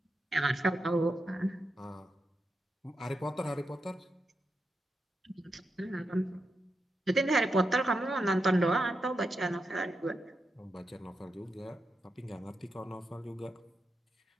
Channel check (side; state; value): both; normal; correlation 0.86